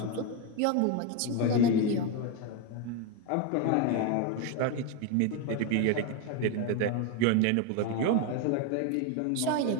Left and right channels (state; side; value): different; both; correlation 0.02